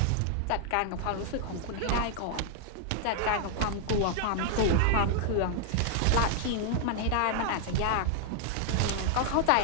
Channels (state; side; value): different; both; correlation -0.01